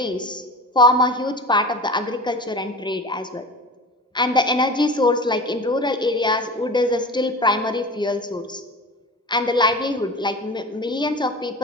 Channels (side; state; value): both; normal; correlation 0.34